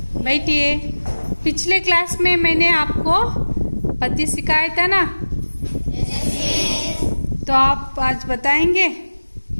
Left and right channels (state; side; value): inverted; both; correlation -1.00